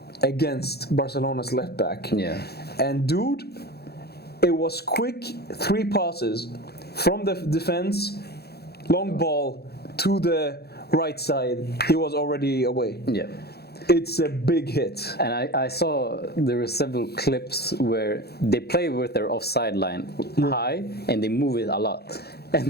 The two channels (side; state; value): right; late; 0.47 ms